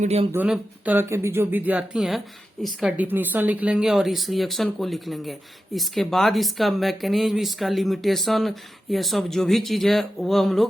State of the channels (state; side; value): normal; both; correlation 0.91